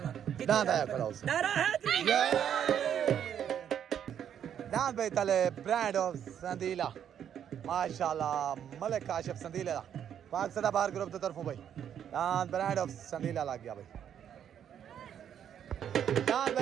दांत आया खड़ा उसे नारा है दांत भाई तले ब्रांड ऑफ संदीला माशाल्लाह मलिक काशिफ संदीला पाक सदाबहार ग्रुप की तरफों भाई दांत ब्रांड ऑफ संदीला लग गया भाई दांत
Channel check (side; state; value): left; quieter; 9.2 dB